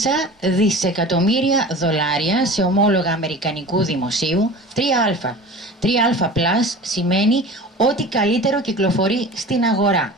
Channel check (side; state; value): both; normal; correlation 0.37